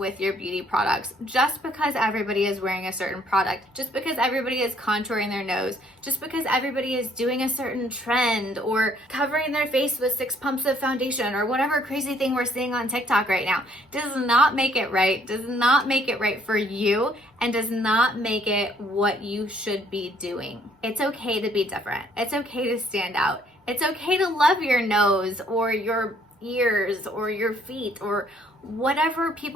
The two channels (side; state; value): both; normal; correlation 0.64